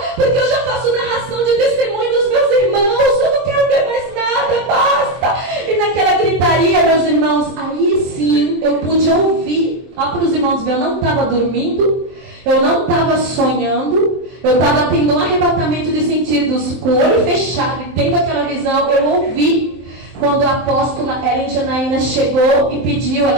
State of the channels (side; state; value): left; late; 23 ms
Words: porque eu já faço narração de testemunho dos meus irmãos, eu não quero ver mais nada, basta. E naquela gritaria, meus irmãos, aí sim eu pude ouvir. Ó, para os irmãos ver, eu não estava dormindo, eu não estava sonhando, eu estava tendo um arrebatamento de sentidos, com o olho fechado e tendo aquela visão. Eu ouvi quando a apóstola Ellen Janaína chegou e pediu,